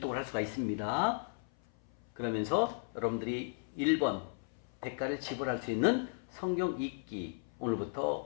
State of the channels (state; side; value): silent; right; 54 dB below the other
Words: 할 수가 있습니다. 그러면서 여러분들이 1번 대가를 지불할 수 있는 성경 읽기